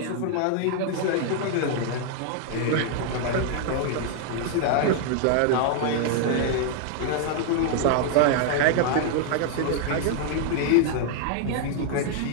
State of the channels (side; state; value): both; different; correlation 0.00